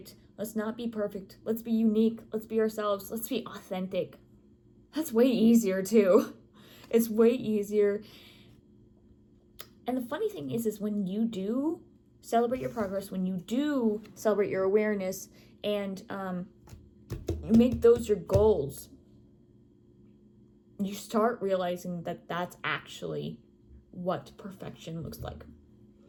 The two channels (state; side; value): identical; both; correlation 1.00